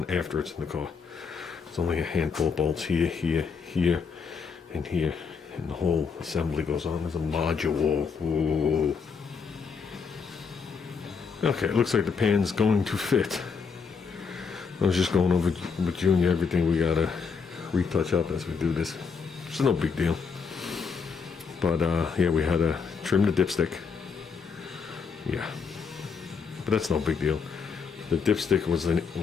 after it's in the car. It's only a handful of bolts here, here, here, and here. And the whole assembly goes on as a module. Ooh. Okay, it looks like the pan's going to fit. I was just going over with Junior everything we gotta retouch up as we do this. It's no big deal. But yeah, we had to trim the dipstick. Yeah, but that's no big deal. The dipstick was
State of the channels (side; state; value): right; quieter; 5.5 dB